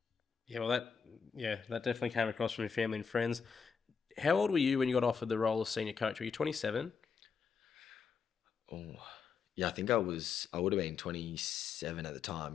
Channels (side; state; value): right; quieter; 6.1 dB